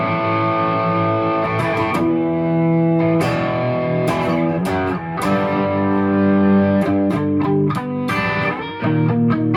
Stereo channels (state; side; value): identical; both; correlation 1.00